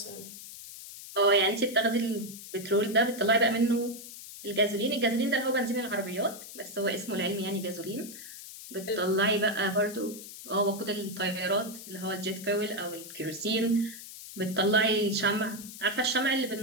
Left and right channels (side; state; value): left; noise; hiss, 13 dB below the sound